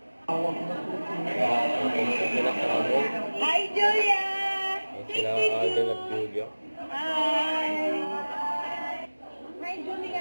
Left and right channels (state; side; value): inverted; both; correlation -1.00